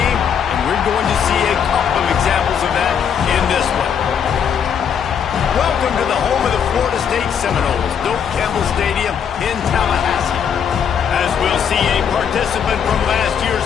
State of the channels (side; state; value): right; quieter; 7.7 dB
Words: and we're going to see a couple of examples of that in this one. Welcome to the home of the Florida State Seminoles, Doak Campbell Stadium in Tallahassee. As we'll see a participant from last year's